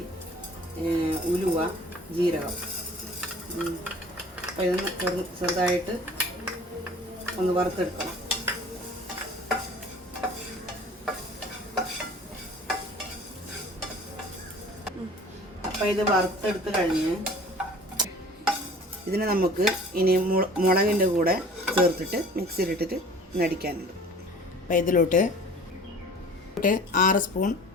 ഉലുവ, ജീരകം. അപ്പോൾ ഇതൊന്ന് ചെറുതായിട്ട് ഒന്ന് വറുത്തെടുക്കണം. അപ്പോൾ ഇത് വറുത്തെടുത്ത് കഴിഞ്ഞ് ഇതിനെ നമുക്ക് ഇനി മുളകിൻ്റെ കൂടെ ചേർത്തിട്ട് മിക്സിയിലിട്ടിട്ട് നടിക്കാനുണ്ട്. അപ്പോൾ ഇതിലോട്ട് 6 സ്പൂൺ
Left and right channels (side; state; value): both; normal; correlation 0.46